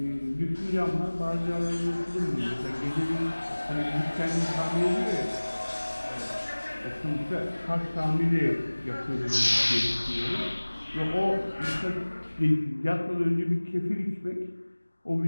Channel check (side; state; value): both; inverted; correlation -1.00